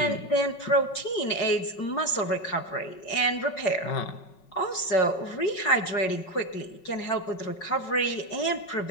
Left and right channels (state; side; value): late; right; 5.4 ms